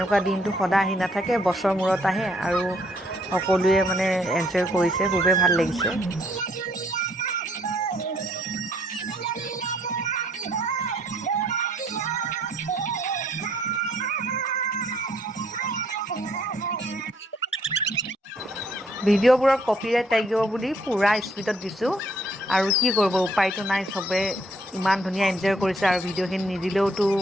দিনটো সদায় আহি নাথাকে, বছৰ মূৰত আহে আৰু সকলোৱে মানে এনজয় কৰিছে, খুবেই ভাল লাগিছে। ভিডিঅ'বোৰত কপিৰাইট লাগিব বুলি পূৰা স্পীডত দিছোঁ, আৰু কি কৰিব, উপায়টো নাই। চবে ইমান ধুনীয়া এনজয় কৰিছে আৰু ভিডিঅ'খিনি নিদিলেওতো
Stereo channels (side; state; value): both; normal; correlation 0.67